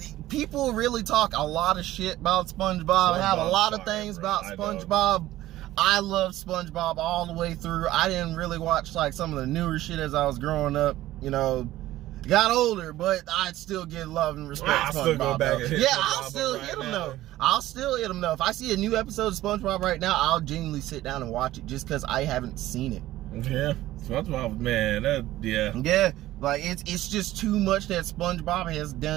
People really talk a lot of shit about SpongeBob. Have a lot of things about SpongeBob. I love SpongeBob all the way through. I didn't really watch like some of the newer shit as I was growing up. You know. Got older, but I'd still get love and respect. I'll still go back and hit yeah, SpongeBob I'll still right hit him now. though. I'll still hit him though. If I see a new episode of SpongeBob right now, I'll genuinely sit down and watch it just because I haven't seen it. Yeah, SpongeBob, man, Yeah, like it's just too much that SpongeBob has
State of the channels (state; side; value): quieter; left; 15.3 dB